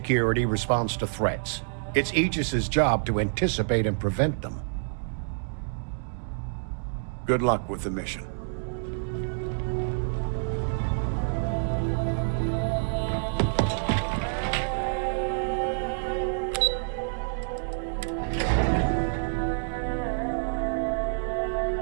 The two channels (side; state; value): left; silent; digital silence